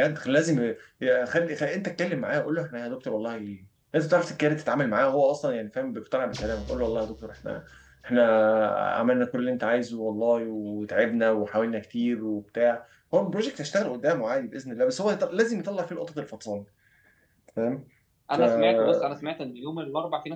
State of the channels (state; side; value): identical; both; correlation 1.00